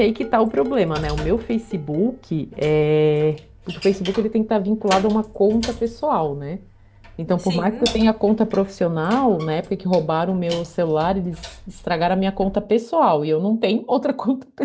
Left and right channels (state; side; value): identical; both; correlation 1.00